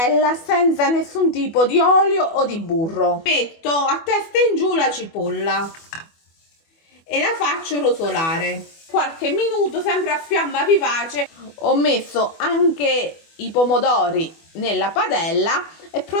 senza nessun tipo di olio o di burro. Metto a testa in giù la cipolla e la faccio rosolare qualche minuto, sempre a fiamma vivace. Ho messo anche i pomodori nella padella e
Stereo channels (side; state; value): right; late; 24 ms